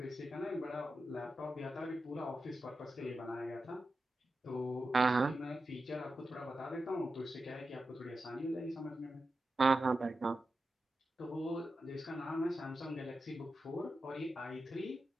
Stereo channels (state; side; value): normal; both; correlation 0.91